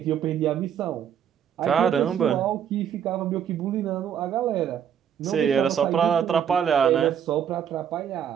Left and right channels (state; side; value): quieter; left; 8.8 dB